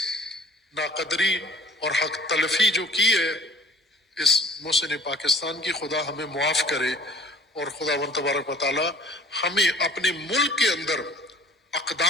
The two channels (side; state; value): both; normal; correlation 0.50